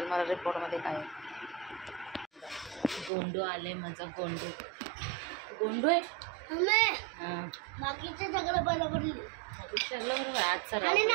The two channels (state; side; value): drops out; left; at 3.1 s